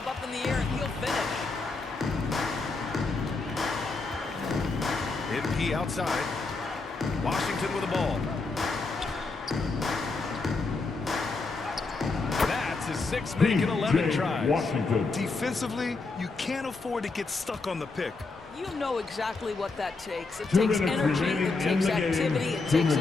up in the air, and he'll finish. MP outside. Washington with the ball. That's his 6 make and 11 tries. Washington. Defensively, you can't afford to get stuck on the pick. You know exactly what that takes. It 2 takes minutes energy, remaining it in takes the game. activity, it 2 takes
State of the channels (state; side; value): quieter; right; 3.8 dB